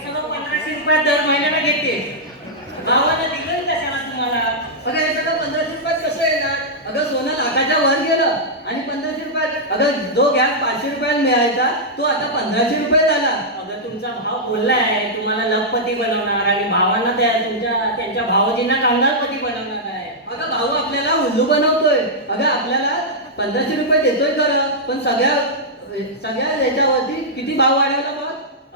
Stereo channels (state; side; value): normal; both; correlation -0.08